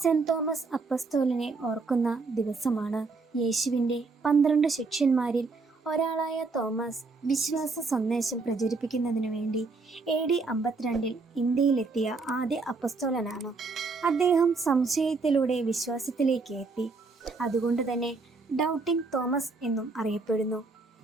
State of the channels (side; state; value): left; quieter; 4.0 dB